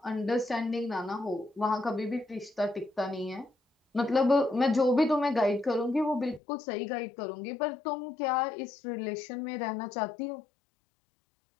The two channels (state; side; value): drops out; right; at 6.4 s